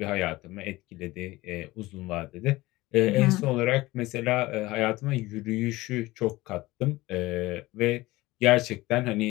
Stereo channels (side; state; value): right; quieter; 19.3 dB